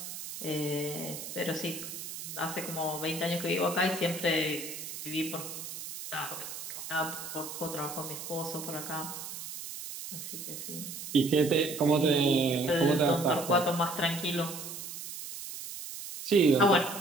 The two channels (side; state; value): right; noise; hiss, 9 dB below the sound